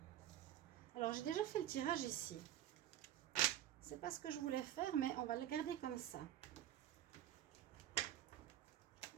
Alors, j'ai déjà fait le tirage ici. C'est pas ce que je voulais faire, mais on va le garder comme ça.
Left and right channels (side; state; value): left; quieter; 12.0 dB